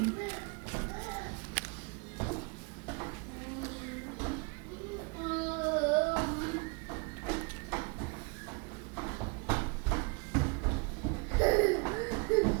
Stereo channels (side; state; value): left; quieter; 31.6 dB